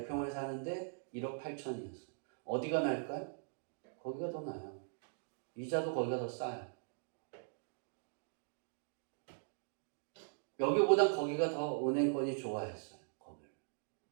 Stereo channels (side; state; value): left; silent; digital silence